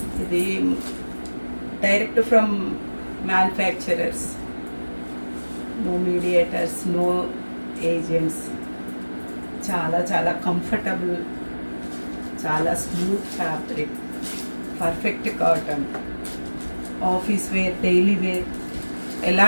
ఇది direct from manufacturers, no mediators, no agents. చాలా చాలా కంఫర్టబుల్, చాలా smooth fabric, perfect cotton. Office wear, daily wear ఎలా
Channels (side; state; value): both; inverted; correlation -1.00